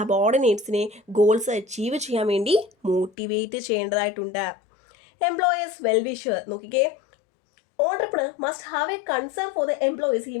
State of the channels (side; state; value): right; drops out; at 3.1 s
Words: ഗോൾസ് അച്ചീവ് ചെയ്യാൻ വേണ്ടി മോട്ടിവേറ്റ് ചെയ്യേണ്ടതായിട്ടുണ്ട്. എംപ്ലോയേഴ്സ് വെൽവിഷർ നോക്കിക്കേ, entrepreneur must have a concern for the employees. He